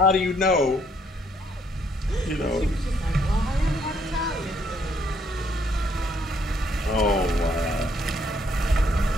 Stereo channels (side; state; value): both; normal; correlation 0.69